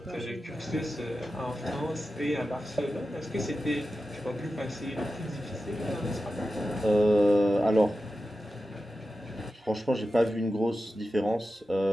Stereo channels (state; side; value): normal; both; correlation 0.92